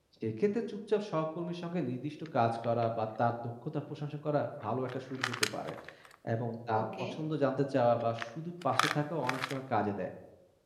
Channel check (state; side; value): identical; both; correlation 1.00